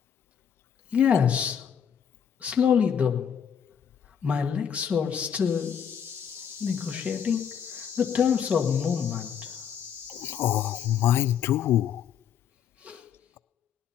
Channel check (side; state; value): right; quieter; 8.1 dB